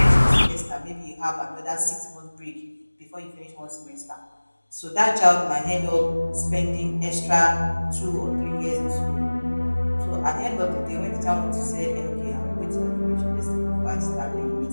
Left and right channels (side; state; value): both; inverted; correlation -1.00